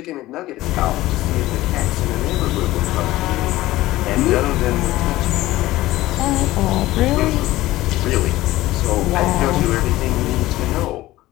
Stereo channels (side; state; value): right; quieter; 16.9 dB